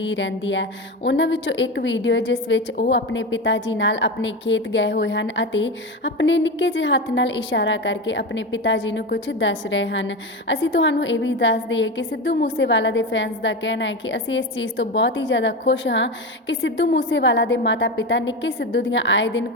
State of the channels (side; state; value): both; normal; correlation 0.20